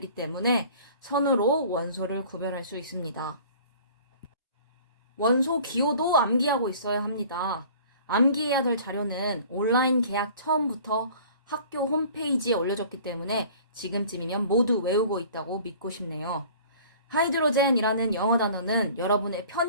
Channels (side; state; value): both; inverted; correlation -0.48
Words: 때문에 선으로 원소를 구별할 수 있습니다. 원소 기호도 암기하고 있어야 합니다. 암기해야 될 자료는 온라인 계약 처음부터 학교 홈페이지에 올려졌기 때문에 지금쯤이면 모두 외우고 있다고 믿고 싶네요. 하이드로젠이라는 영어 단어는 여러분의